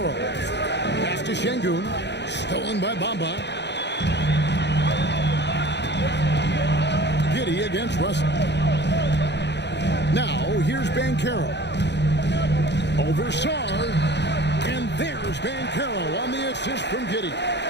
Pass to Şengün. Stolen by Bamba. Giddey against Russell. Now here's Banchero. Over Sarr. And there's Banchero on the assist from Giddey.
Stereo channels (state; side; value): late; right; 0.50 ms